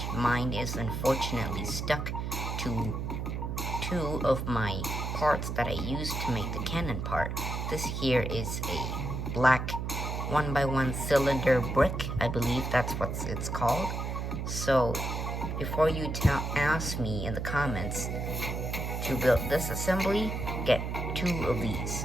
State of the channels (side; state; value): right; noise; hum, 3 dB below the sound